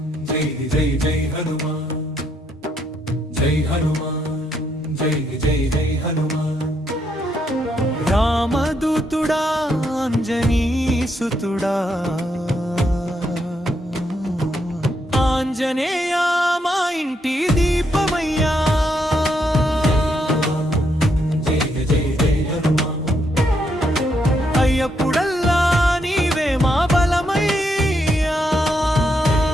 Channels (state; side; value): normal; both; correlation 0.77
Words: జై జై జై హనుమాన్ జై హనుమాన్ జై జై జై హనుమాన్ రామదూతుడా అంజనీసుతుడా ఆంజనేయ మా ఇంటి దీపమయ్యా జై జై జై హనుమాన్ అయ్యప్పుడల్లా నీవే మా బలమయ్యా